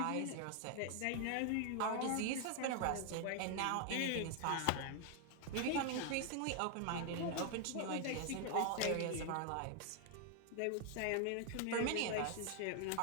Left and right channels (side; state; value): both; different; correlation 0.00